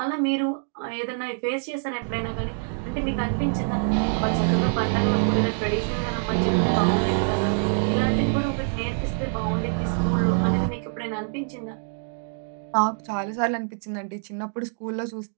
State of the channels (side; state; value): left; silent; digital silence